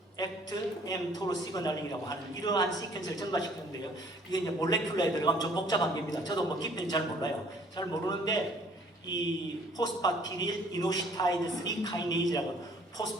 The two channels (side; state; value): both; normal; correlation 0.57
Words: 액트 mTOR 시그널링이라고 하는 이러한 시퀀스를 증가시키는데요. 이게 이제 몰레큘러에 들어가면 좀 복잡한 겁니다. 저도 뭐 깊이는 잘 몰라요. 잘 모르는데 이 포스파티딜 이노시타이드 3 카이네이즈라고